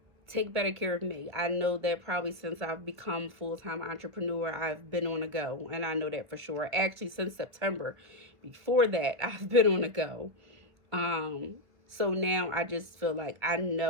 take better care of me. I know that probably since I've become full-time entrepreneur, I've been on a go. And I know that for sure. Actually, since September. Before that, I've been on a go. So now I just feel like I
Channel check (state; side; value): late; left; 1.2 ms